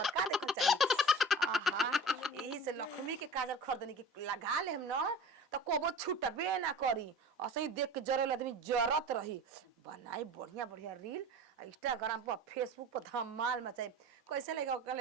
घर का देखल चाहे। आहा यही से लक्ष्मी के काजल खरीदनी के लगा ले हम न त कोबो छूटबे ना करी असही देख के जरल आदमी जरत रही। बनाई बढ़िया बढ़िया रील इंस्टाग्राम पर फेसबुक पर धमाल मचाई कैसे लगा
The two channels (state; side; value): normal; both; correlation 0.37